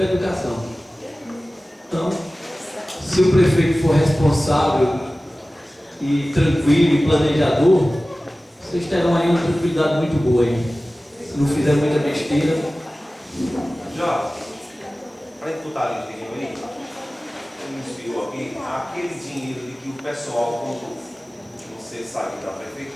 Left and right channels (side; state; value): both; normal; correlation 0.97